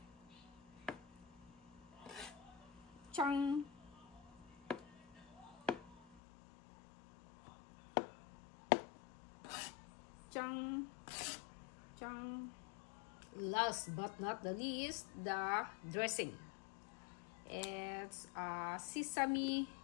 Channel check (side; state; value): right; drops out; at 6.2 s